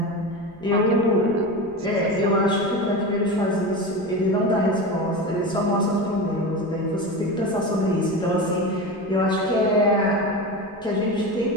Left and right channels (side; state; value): left; noise; rumble, 27 dB below the sound